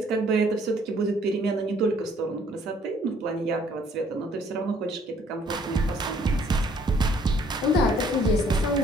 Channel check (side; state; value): both; normal; correlation 0.62